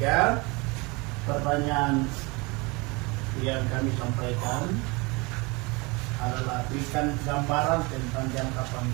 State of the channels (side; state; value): left; quieter; 26.6 dB